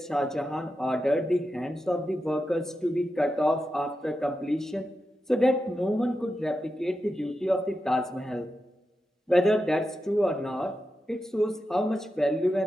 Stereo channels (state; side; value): normal; both; correlation 0.89